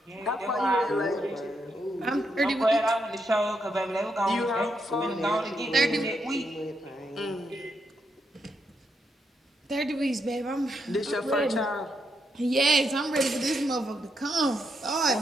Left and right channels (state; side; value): normal; both; correlation 0.80